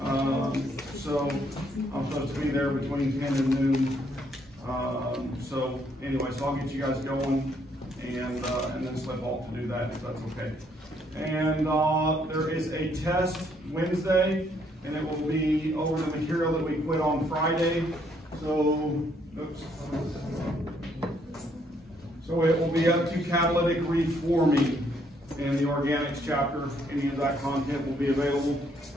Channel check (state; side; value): normal; both; correlation 0.70